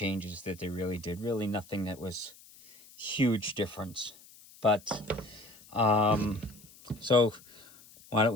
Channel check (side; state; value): left; noise; hiss, 23 dB below the sound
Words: that they really did. Really nothing that was huge difference. But so why don't